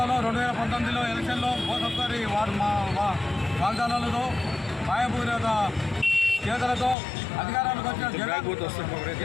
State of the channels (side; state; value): right; drops out; at 7.0 s